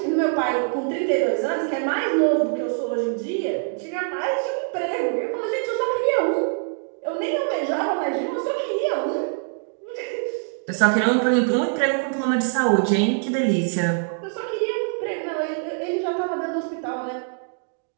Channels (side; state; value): left; silent; 63 dB below the other